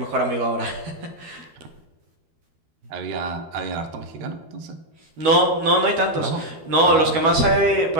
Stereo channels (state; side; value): late; left; 12 ms